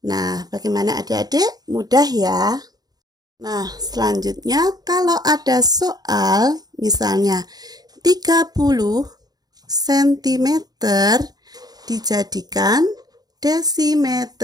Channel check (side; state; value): left; late; 0.19 ms